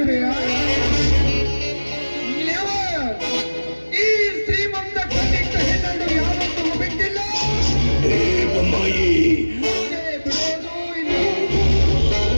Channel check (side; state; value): both; inverted; correlation -1.00